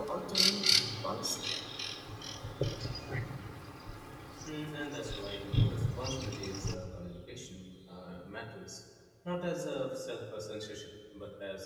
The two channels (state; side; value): identical; both; correlation 1.00